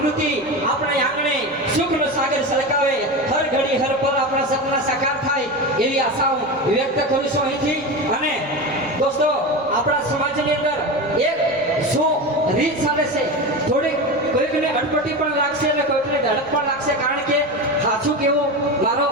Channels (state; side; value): noise; right; rumble, 28 dB below the sound